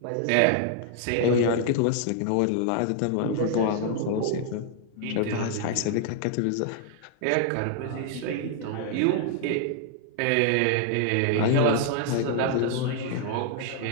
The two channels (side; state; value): both; different; correlation 0.00